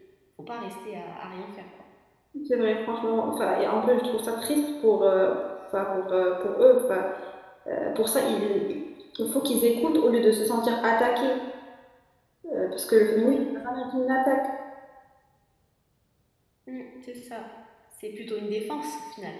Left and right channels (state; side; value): identical; both; correlation 1.00